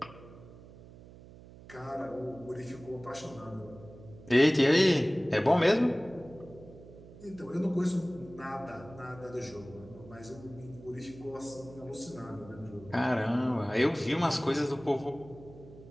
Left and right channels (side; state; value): right; noise; hum, 19 dB below the sound